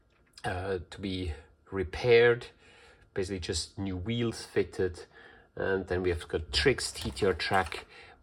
to be repaired. Basically, just new wheels fitted, and then we have got Trix TTR track,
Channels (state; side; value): identical; both; correlation 1.00